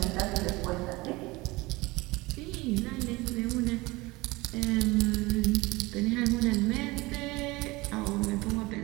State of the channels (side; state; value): left; quieter; 22.1 dB